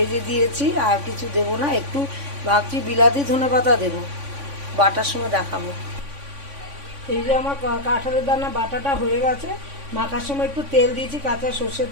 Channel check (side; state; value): left; late; 3.5 ms